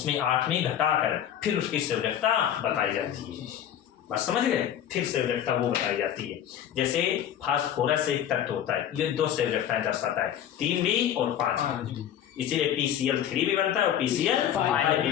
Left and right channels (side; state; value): right; quieter; 10.3 dB